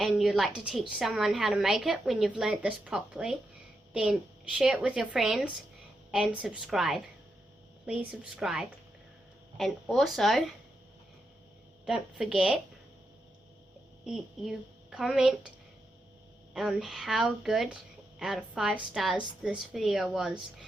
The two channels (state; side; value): normal; both; correlation 0.85